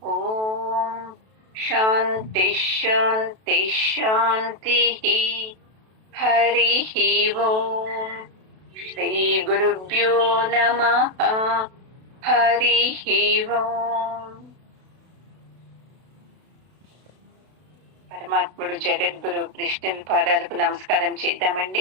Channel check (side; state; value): left; late; 32 ms